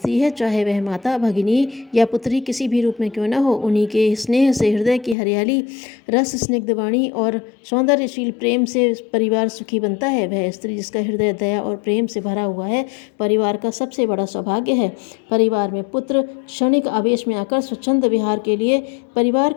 है, चाहे वह माता, भगिनी या पुत्री किसी भी रूप में क्यों न हो। उन्हीं के स्नेह से हृदय की हरियाली, रस स्निग्ध वाणी और सौंदर्यशील प्रेम से परिवार सुखी बनता है। वह स्त्री जिसका हृदय दया और प्रेम से भरा हुआ है परिवार का सबसे बड़ा सौभाग्य है। परिवार में पुत्र क्षणिक आवेश में आकर स्वच्छंद विहार के लिए परिवार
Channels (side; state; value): right; drops out; at 5.2 s